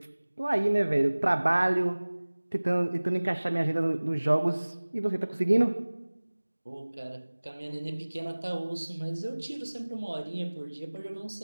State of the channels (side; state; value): both; inverted; correlation -1.00